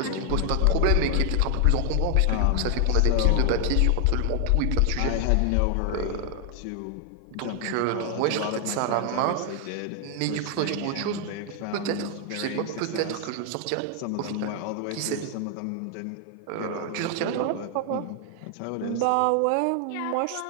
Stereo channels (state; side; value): different; both; correlation 0.00